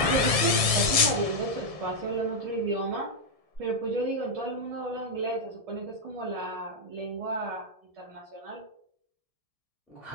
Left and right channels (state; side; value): late; left; 1.7 ms